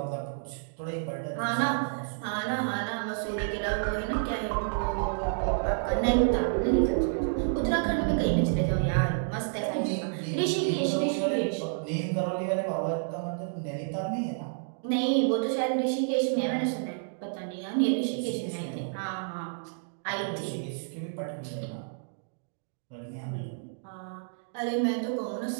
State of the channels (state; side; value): silent; left; digital silence